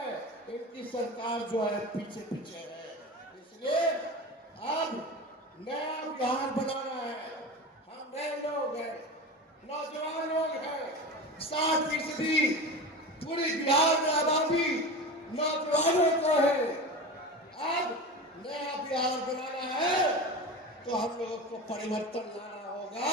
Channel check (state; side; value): normal; both; correlation 0.28